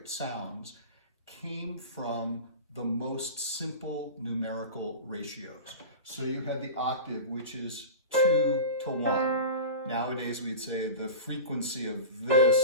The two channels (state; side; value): inverted; both; correlation -0.30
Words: sounds came from the most simple numerical ratios. So you had the octave, which is 2 to 1. Nowadays we'd say the frequency of this